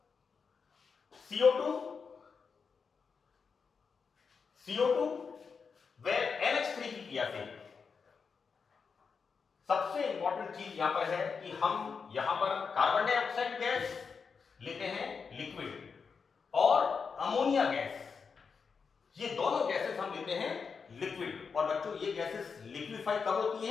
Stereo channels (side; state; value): right; quieter; 5.6 dB